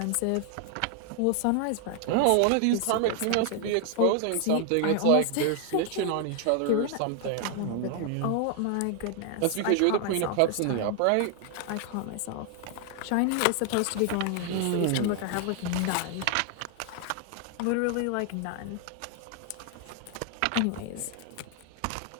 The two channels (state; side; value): different; both; correlation 0.00